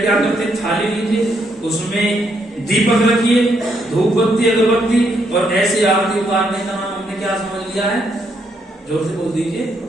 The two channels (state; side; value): normal; both; correlation 0.75